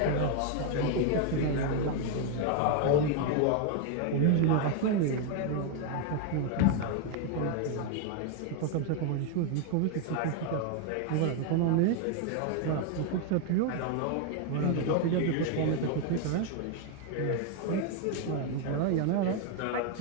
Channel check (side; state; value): both; different; correlation 0.00